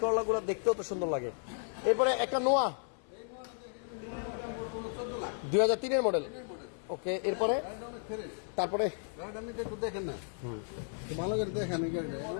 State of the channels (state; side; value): silent; right; 55 dB below the other